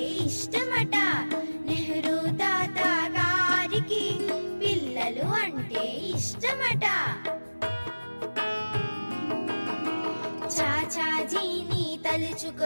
ఇష్టమట నెహ్రూ తాత గారికి పిల్లలు అంటే ఇష్టమట చాచాజీని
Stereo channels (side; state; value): both; inverted; correlation -1.00